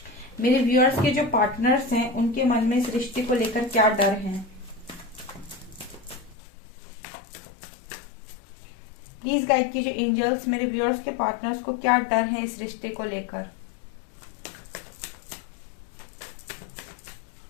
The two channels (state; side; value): drops out; right; at 6.4 s